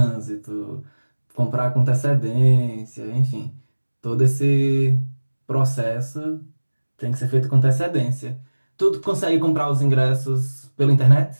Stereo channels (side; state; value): both; inverted; correlation -1.00